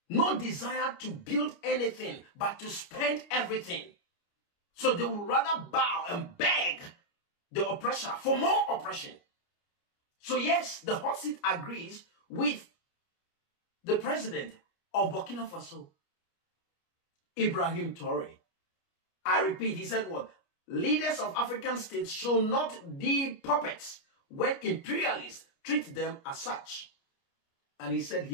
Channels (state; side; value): late; right; 29 ms